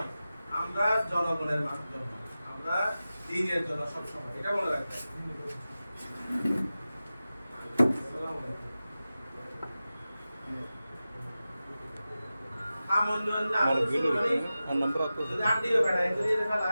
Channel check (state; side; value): inverted; both; correlation -0.94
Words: আমরা জনগণের জন্য, আমরা দিনের জন্য সবসময়, এটা মনে রাখবেন।